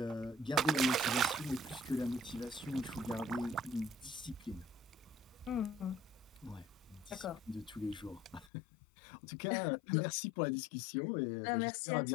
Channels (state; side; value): drops out; right; at 8.5 s